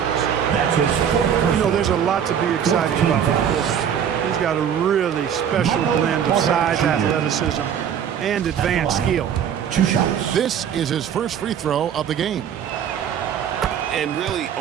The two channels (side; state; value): left; quieter; 8.6 dB